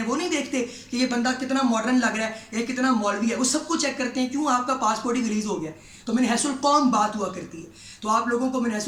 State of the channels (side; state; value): both; identical; correlation 1.00